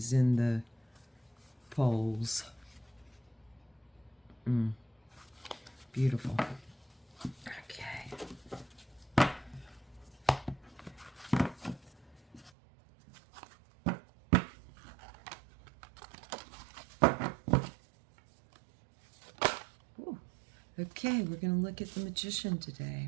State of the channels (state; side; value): drops out; left; at 12.5 s